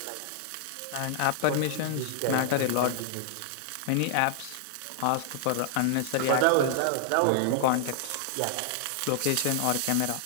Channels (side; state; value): both; different; correlation -0.01